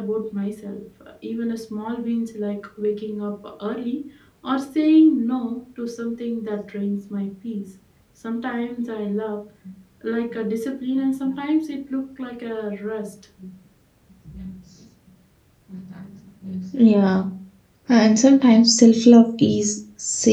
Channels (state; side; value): identical; both; correlation 1.00